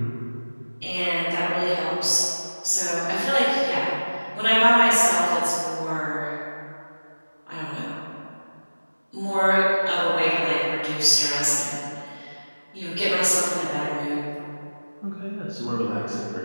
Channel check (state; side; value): inverted; both; correlation -1.00